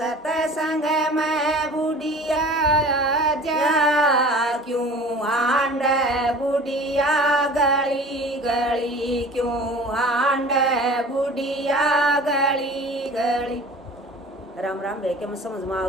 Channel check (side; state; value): both; normal; correlation 0.42